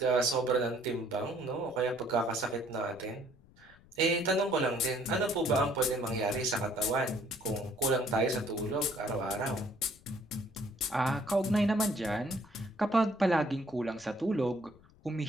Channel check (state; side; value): noise; left; rumble, 26 dB below the sound